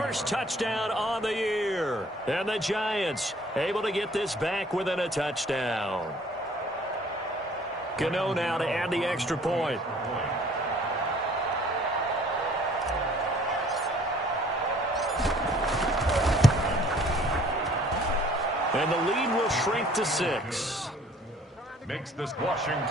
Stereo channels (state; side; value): normal; both; correlation 0.56